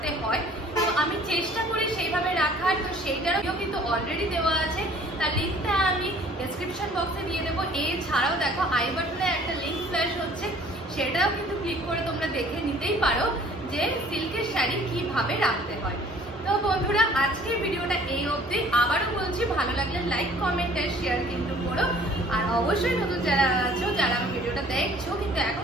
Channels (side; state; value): both; normal; correlation 0.54